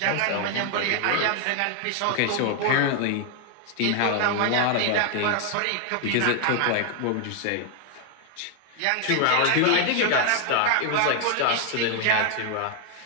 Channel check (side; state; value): both; different; correlation 0.00